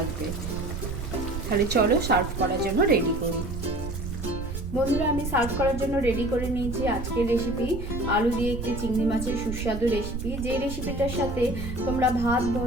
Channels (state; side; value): noise; right; rumble, 6 dB below the sound